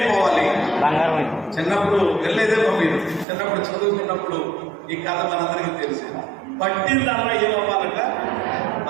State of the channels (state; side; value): drops out; left; at 3.2 s